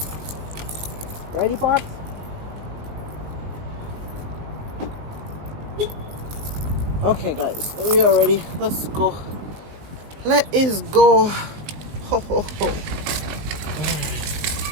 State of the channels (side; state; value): left; late; 19 ms